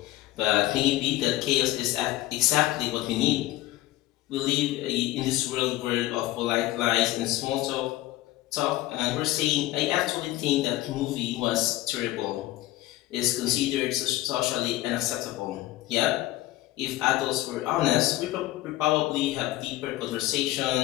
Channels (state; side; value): quieter; right; 16.5 dB